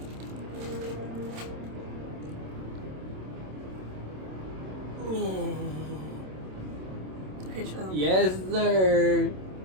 Okay, shut up. Yes, sir.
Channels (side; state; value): left; late; 27 ms